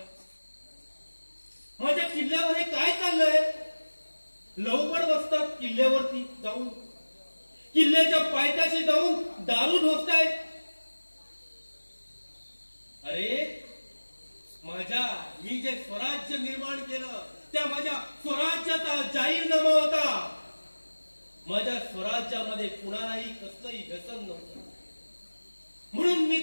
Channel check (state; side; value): inverted; both; correlation -1.00